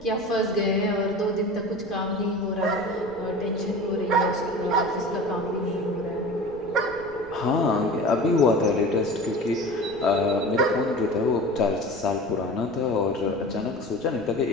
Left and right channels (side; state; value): right; noise; rumble, 21 dB below the sound